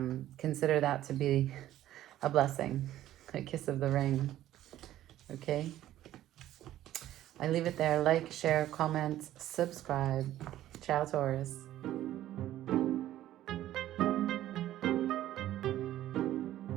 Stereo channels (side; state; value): left; quieter; 13.4 dB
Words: consider that to be a blessing, a kiss of the ring. Okay? I leave it there. Like, share, comment, subscribe. Ciao, Taurus.